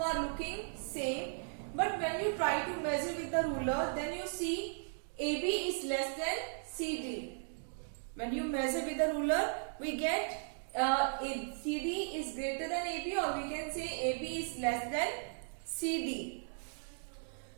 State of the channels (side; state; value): left; silent; digital silence